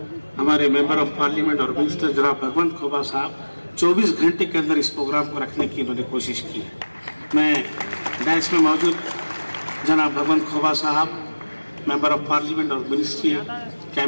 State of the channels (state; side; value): inverted; both; correlation -1.00